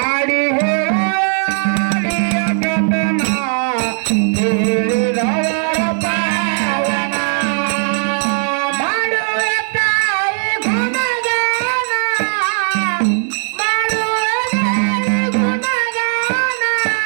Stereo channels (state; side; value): silent; left; 68 dB below the other